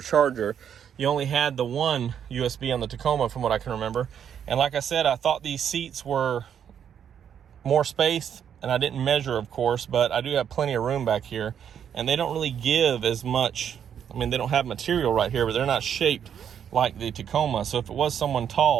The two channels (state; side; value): quieter; left; 8.6 dB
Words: charger. You only had the 1 USB on the Tacoma from what I can remember. And like I said, I thought these seats were more space, and I didn't measure, of course, but I do have plenty of room back here. And they don't really give as much I mean, they don't have material right here, but they're not shaped like the Tacoma. So if it was someone